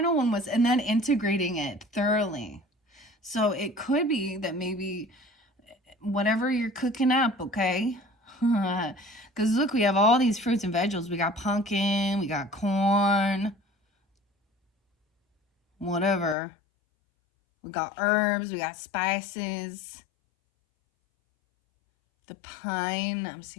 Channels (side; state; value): right; drops out; at 16.4 s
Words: one was, and then integrating it thoroughly. So it could be that maybe whatever you're cooking up, okay? Because look, we have all these fruits and vegetables. We got pumpkin, we got corn, whatever. We got herbs, we got spices. The pine, I'm